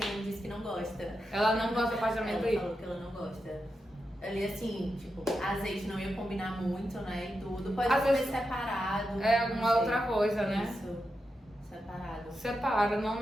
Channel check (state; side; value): normal; both; correlation 0.88